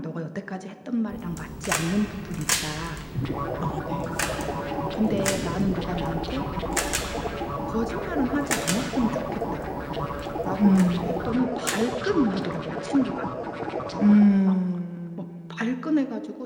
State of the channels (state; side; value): identical; both; correlation 1.00